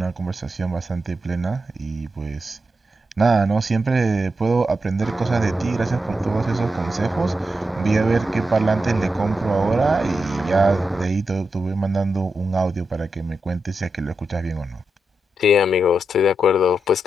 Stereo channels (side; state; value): both; normal; correlation 0.86